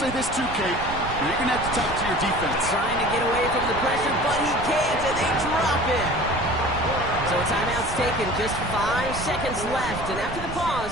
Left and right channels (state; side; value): noise; right; rumble, 9 dB below the sound